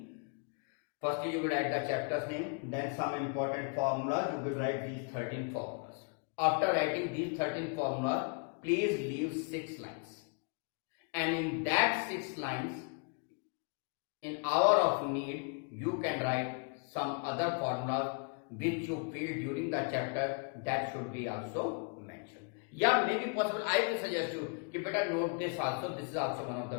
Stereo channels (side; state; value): right; quieter; 37.9 dB